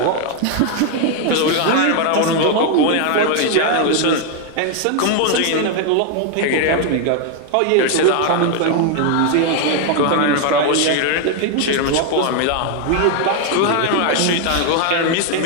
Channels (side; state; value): both; different; correlation 0.01